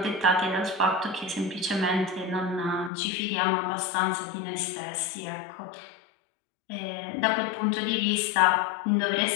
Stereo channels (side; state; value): right; drops out; at 2.9 s